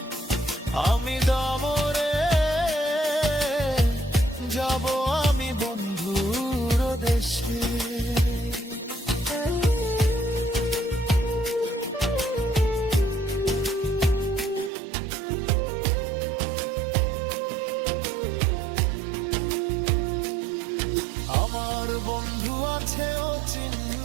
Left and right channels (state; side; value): drops out; left; at 14.7 s